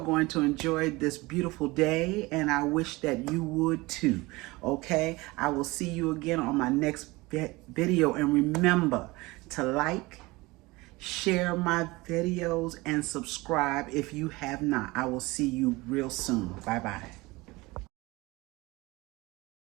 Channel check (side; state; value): left; quieter; 22.2 dB